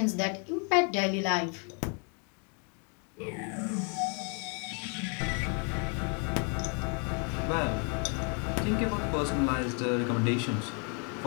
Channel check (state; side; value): quieter; right; 38.1 dB